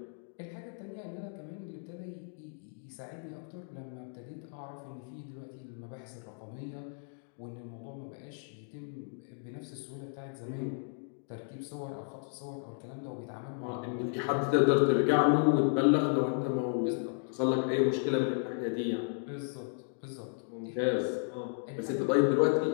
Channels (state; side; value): silent; right; digital silence